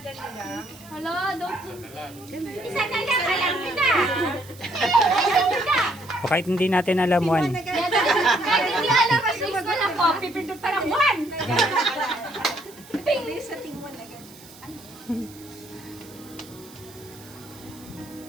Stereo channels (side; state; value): right; noise; hiss, 21 dB below the sound